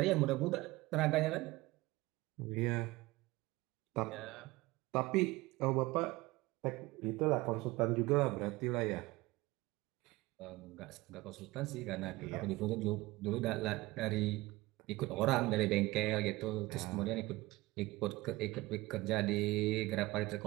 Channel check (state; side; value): quieter; left; 20.2 dB